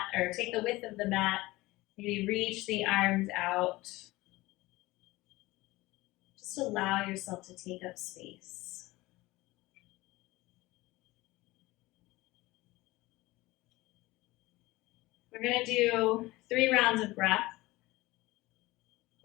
or take the width of the mat. Maybe reach the arms out. Just allow yourself to take up space. We're going to do 3 rounds of breath.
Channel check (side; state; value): right; quieter; 19.7 dB